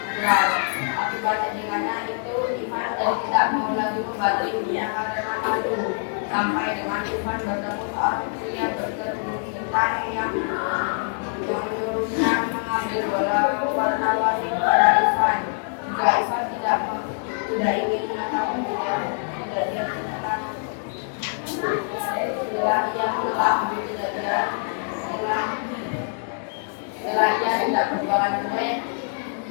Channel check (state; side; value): silent; right; 58 dB below the other